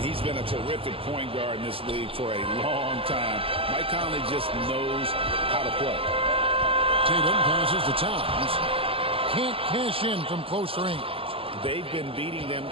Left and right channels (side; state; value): left; late; 0.27 ms